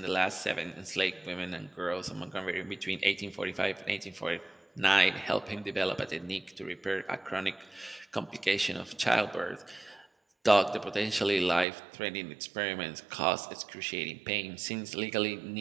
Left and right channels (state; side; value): drops out; left; at 11.7 s